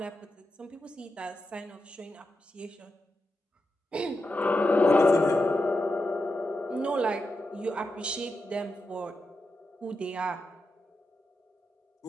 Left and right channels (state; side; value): normal; both; correlation 0.88